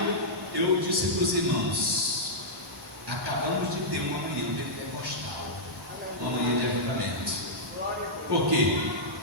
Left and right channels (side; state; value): both; normal; correlation -0.11